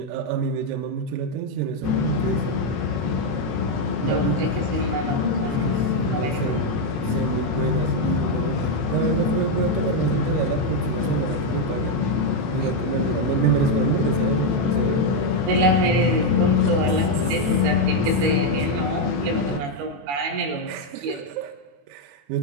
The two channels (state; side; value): late; left; 21 ms